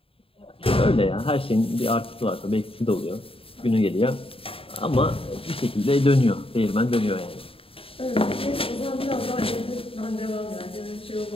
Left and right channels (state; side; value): late; right; 0.27 ms